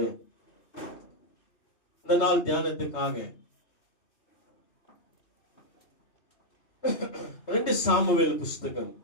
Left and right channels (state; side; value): late; right; 3.3 ms